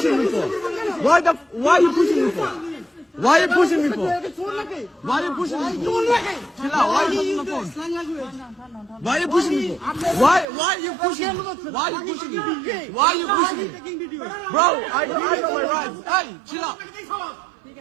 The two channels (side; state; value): left; drops out; at 10.5 s